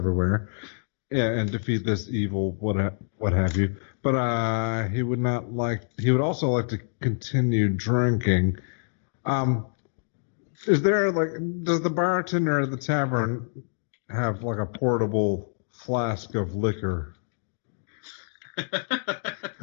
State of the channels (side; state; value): right; silent; digital silence